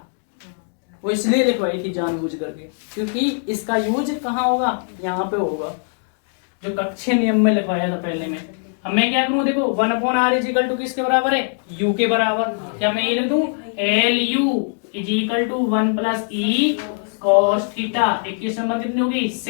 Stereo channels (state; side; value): silent; right; 65 dB below the other